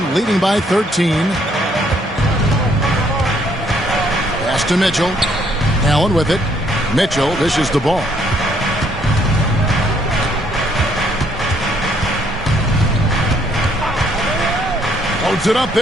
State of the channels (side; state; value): both; normal; correlation 0.67